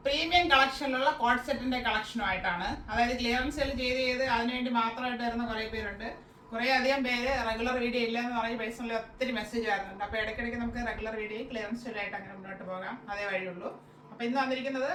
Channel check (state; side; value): identical; both; correlation 1.00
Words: പ്രീമിയം കളക്ഷനിലുള്ള കോഡ് സെറ്റിന്റെ കളക്ഷനുമായിട്ടാണ്. അതായത് ക്ലിയറൻസ് സെയിൽ ചെയ്ത് അതിനുവേണ്ടി മാത്രമായിട്ട് വരുന്ന കുറേ പേരുണ്ട്. കുറേ അധികം പേര് റെഗുലർ വീഡിയോ ഇല്ല എന്ന് പറഞ്ഞ് പേഴ്സണലി ഒത്തിരി മെസ്സേജ് വരുന്നുണ്ട്. അപ്പോൾ ഇടയ്ക്കിടയ്ക്ക് നമുക്ക് റെഗുലർ വീഡിയോ ക്ലിയറൻസ് സെയിലായിട്ട് അങ്ങനെ മുന്നോട്ട് പോകാം, അതേ വഴിയുള്ളൂ. അപ്പോൾ ഇന്ന് വന്നിരിക്കുന്നത്